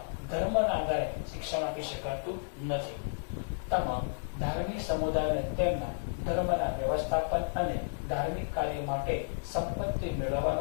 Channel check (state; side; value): silent; right; digital silence